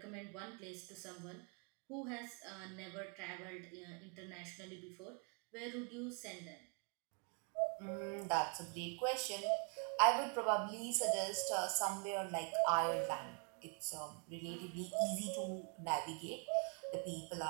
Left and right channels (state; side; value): quieter; left; 38.3 dB